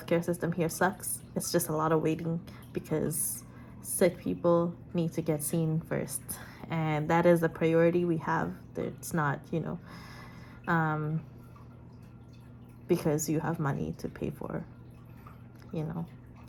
system here sucks. It's just a lot of waiting, because sick people need to get seen first, and that is a priority we have. It's not, you know, because you have money to pay for, you know.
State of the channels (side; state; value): both; identical; correlation 1.00